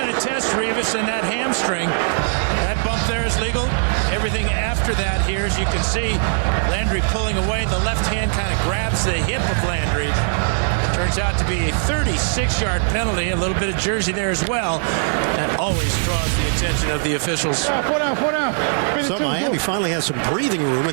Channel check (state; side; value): silent; left; digital silence